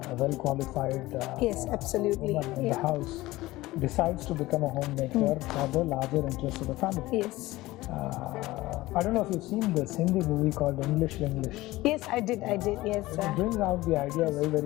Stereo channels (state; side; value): quieter; right; 18.5 dB